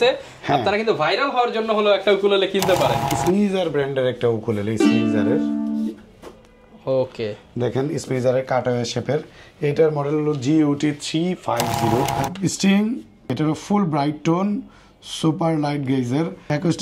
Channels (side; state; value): both; identical; correlation 1.00